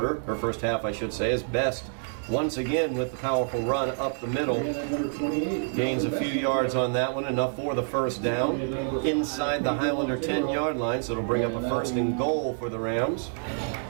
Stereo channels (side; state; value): left; silent; digital silence